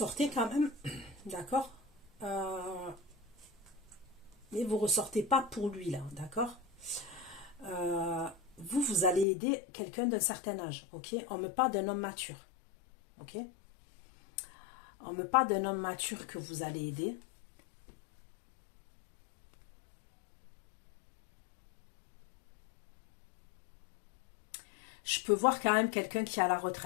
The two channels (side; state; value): right; drops out; at 9.2 s